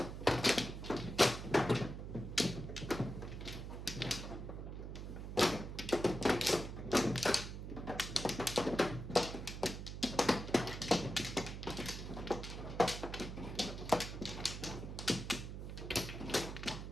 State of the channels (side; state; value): right; noise; hum, 7 dB below the sound